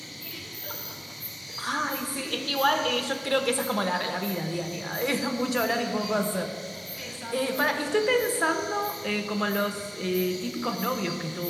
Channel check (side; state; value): both; identical; correlation 1.00